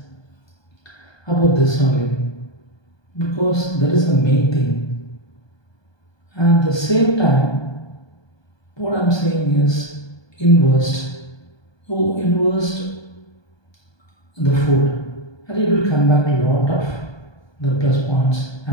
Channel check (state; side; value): late; right; 1.2 ms